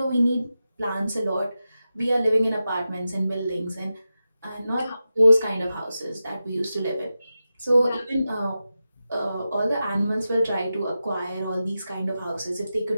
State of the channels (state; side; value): inverted; both; correlation -0.92